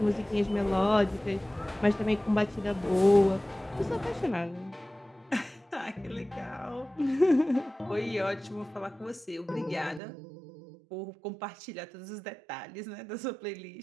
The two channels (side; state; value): left; drops out; at 10.0 s